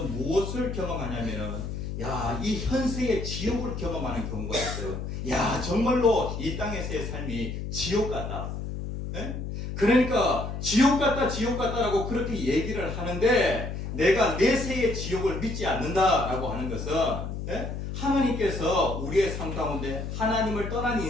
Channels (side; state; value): left; noise; hum, 5 dB below the sound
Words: 무엇을 경험하냐면은, 야, 이 현세의 지옥을 경험하는 경우가 있어요. 야, 정말로 이 땅에서의 삶이 지옥 같다. 그러니까 지옥 같다라고 그렇게 얘기를 하는데, 내가 내세의 지옥을 믿지 않는다라고 하는 것은 하나님께서 우리의 삶 가운데 하나님을 떠난